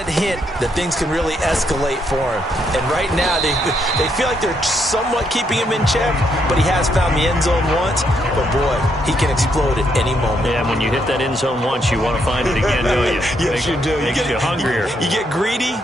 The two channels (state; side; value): normal; both; correlation 0.76